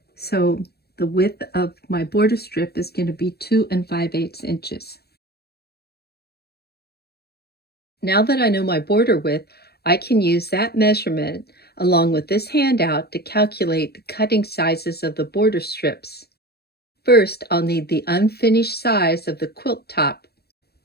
So the width of my border strip is going to be 2 5/8 inches. Now that I know my border width, I can use that measurement along with this handout to calculate the cutting sizes of the border strips. First, I'll need the unfinished size of the quilt top.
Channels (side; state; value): right; late; 0.47 ms